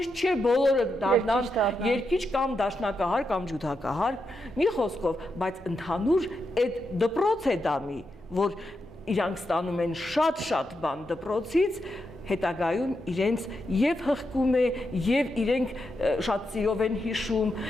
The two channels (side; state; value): both; normal; correlation 0.85